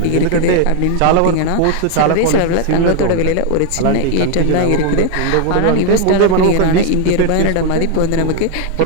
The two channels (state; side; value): different; both; correlation 0.00